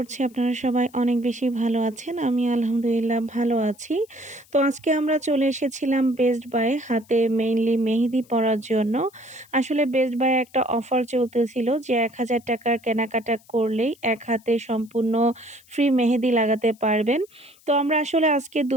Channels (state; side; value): noise; left; hiss, 28 dB below the sound